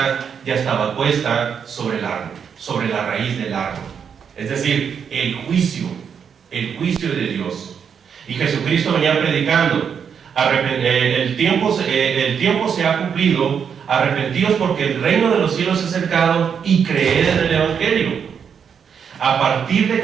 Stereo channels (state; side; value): quieter; left; 7.2 dB